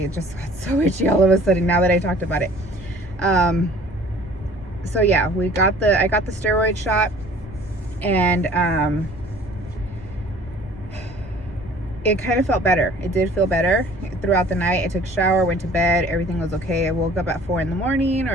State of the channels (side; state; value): both; normal; correlation 0.51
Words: it just got so itchy all of a sudden now that I talked about it. So yeah, I got the steroid shot, and it kind of felt better. It did feel better throughout the night. I took a shower, went to bed, everything was okay. I woke up at 4 in the morning